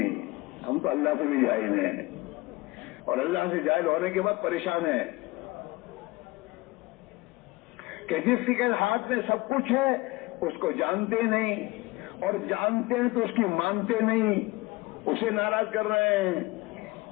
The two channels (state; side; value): quieter; right; 21.7 dB